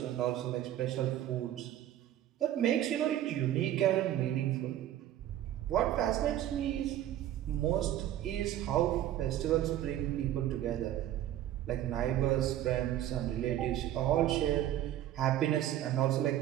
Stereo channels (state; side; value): quieter; left; 12.4 dB